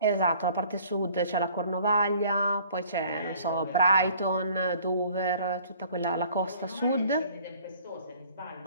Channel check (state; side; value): inverted; both; correlation -0.54